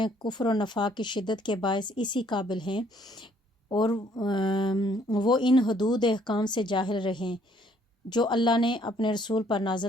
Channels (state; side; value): normal; both; correlation 0.64